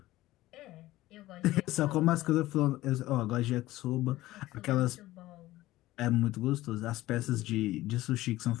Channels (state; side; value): quieter; right; 16.8 dB